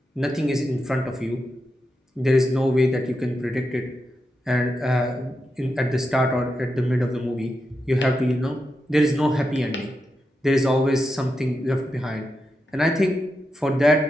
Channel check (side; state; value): both; normal; correlation 0.87